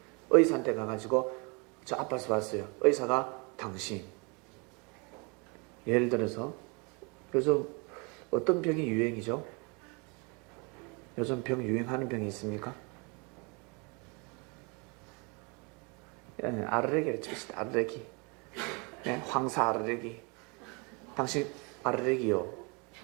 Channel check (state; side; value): quieter; left; 31.2 dB